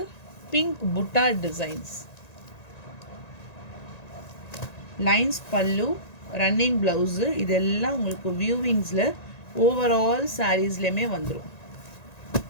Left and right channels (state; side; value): late; right; 1.9 ms